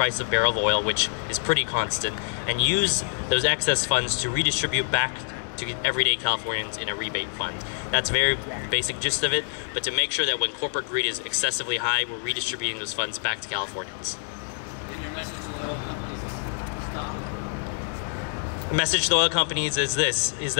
of barrel of oil, which is pretty constant, and use those excess funds to redistribute back to everyday Californians in a rebate fund. That's a very basic gist of it, but to make sure that when corporate greed is excessively high, we're redistributing those funds back to Californians. And your message to the oil companies is stop? The message to the oil companies is this, is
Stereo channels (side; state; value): right; silent; digital silence